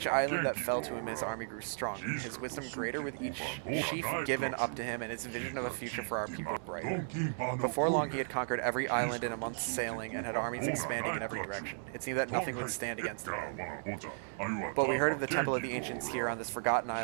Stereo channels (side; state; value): left; silent; digital silence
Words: island that fell to him, his army grew stronger, his wisdom greater with each chief given up to him, and his vision of a future for our people brighter. Before long, he had conquered every island in a month's sailing and had armies expanding in every direction. It seemed that nothing would stand against him. But we heard of the Temple of the Ancients here on this forgotten